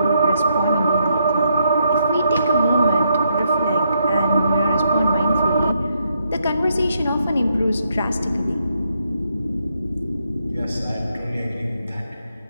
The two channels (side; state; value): both; inverted; correlation -0.77